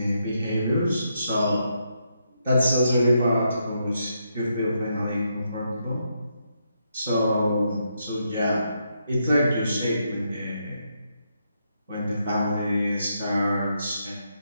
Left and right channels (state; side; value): inverted; both; correlation -0.79